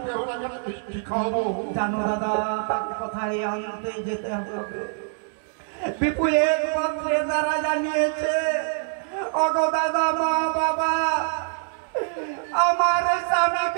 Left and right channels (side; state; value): left; silent; 61 dB below the other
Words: বেহুলাকে মিষ্টি খাওয়াবো। জানো দাদা তাকে কোথায় আনতে যেতে হবে? বিপু এক পত্রে তারা জানিয়েছে, ওগো দাদা মা বাবা আমার